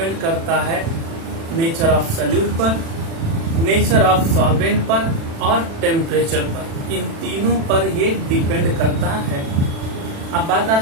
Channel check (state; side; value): late; left; 36 ms